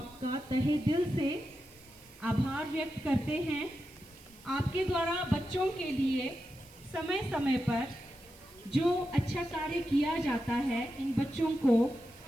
तहे दिल से आभार व्यक्त करते हैं। आपके द्वारा बच्चों के लिए समय समय पर जो अच्छा कार्य किया जाता है, इन बच्चों को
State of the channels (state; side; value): noise; right; hiss, 24 dB below the sound